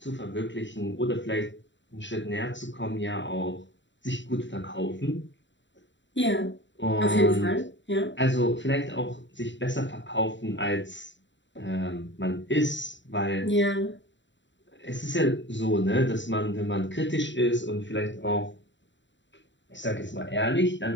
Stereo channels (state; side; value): late; right; 0.53 ms